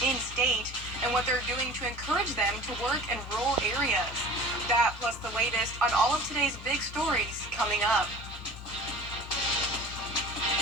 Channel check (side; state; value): both; normal; correlation 0.41